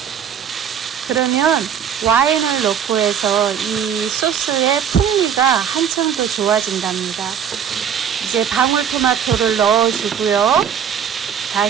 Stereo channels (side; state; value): left; quieter; 8.3 dB